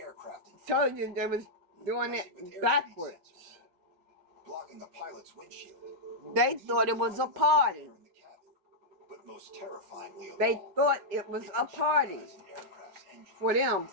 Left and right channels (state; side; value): late; left; 5.1 ms